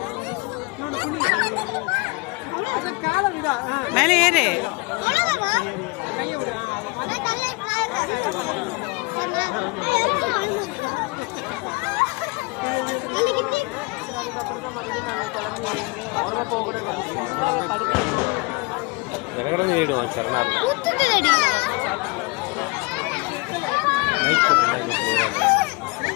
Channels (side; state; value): right; quieter; 27.4 dB